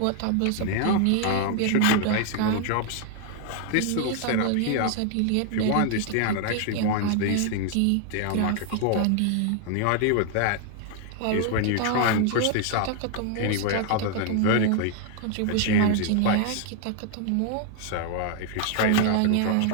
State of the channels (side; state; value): both; different; correlation 0.00